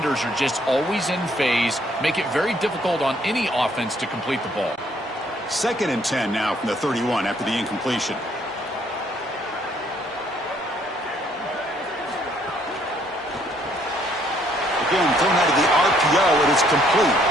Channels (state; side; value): normal; both; correlation 0.66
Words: are just always in phase, make it very difficult on any offense to complete the ball. 2nd and 10 now from the 31 after the incompletion. Again, thrown out of the RPO, it is